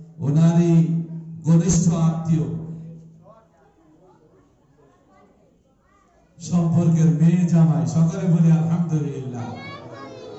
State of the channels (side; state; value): both; identical; correlation 1.00